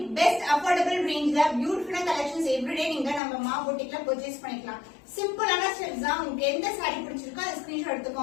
பெஸ்ட் அஃபோர்டபிள் ரேஞ்ச்ல பியூட்டிஃபுல்லான கலெக்ஷன்ஸ் எவ்ரிடே நீங்க நம்ம மா பொட்டிக்ல பர்ச்சேஸ் பண்ணிக்கலாம். சிம்பிளான ஸ்டெப்ஸ் தான். உங்களுக்கு எந்த சாரி பிடிச்சிருக்கோ அதை ஸ்கிரீன்ஷாட்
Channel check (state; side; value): drops out; right; at 3.2 s